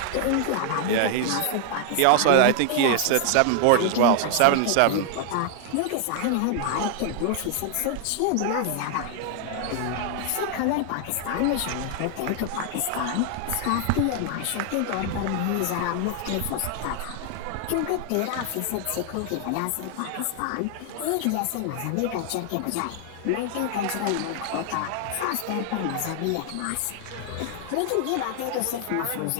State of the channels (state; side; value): different; both; correlation 0.00